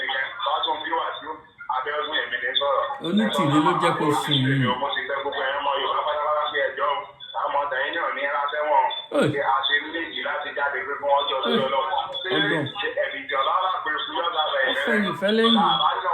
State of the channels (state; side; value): identical; both; correlation 1.00